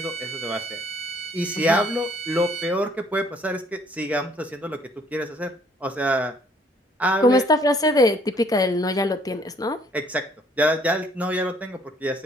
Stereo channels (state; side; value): normal; both; correlation 0.62